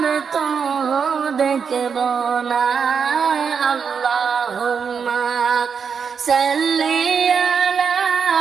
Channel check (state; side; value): quieter; left; 6.4 dB